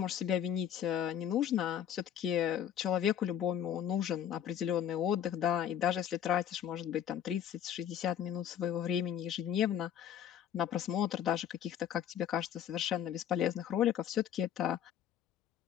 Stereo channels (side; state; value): right; quieter; 9.8 dB